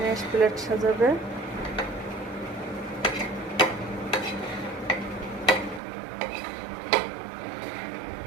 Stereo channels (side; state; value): left; drops out; at 5.8 s